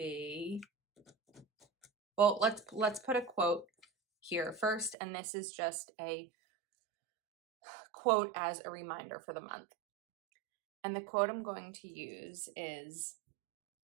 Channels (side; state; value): left; drops out; at 5.0 s